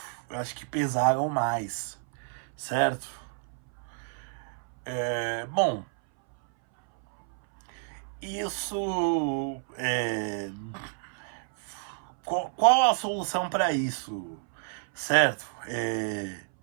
acho que pesaram mais, certo? Bom, isso qual a solução para isso, certo?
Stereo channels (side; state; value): left; silent; 58 dB below the other